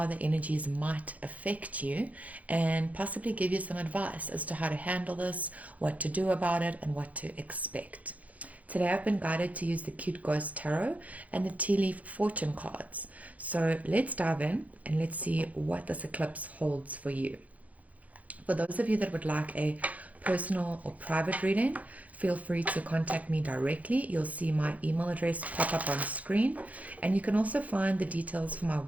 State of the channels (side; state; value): left; late; 0.072 ms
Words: the energies might affect you and possibly give you some advice as to how to handle this, what to do about it, and what to expect. Today I've been guided to use the Cute Ghost Tarot and the Tea Leaf Fortune cards. So let's dive in and let's see what this eclipse holds for you. For those of you that would like a personal or private reading, feel free to contact me directly. You'll see my email address pop up on screen, and you can also find the details for my